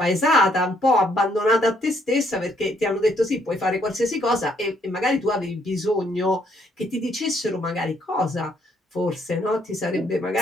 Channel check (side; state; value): both; normal; correlation 0.69